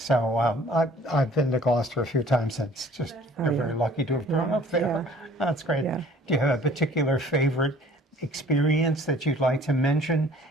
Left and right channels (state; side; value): normal; both; correlation 0.53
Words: I've been to Gloucester a few times. It's just very lucky to have grown up there. Yeah. That's great. Yeah. Do you have a particular favorite experience that you'd like to mention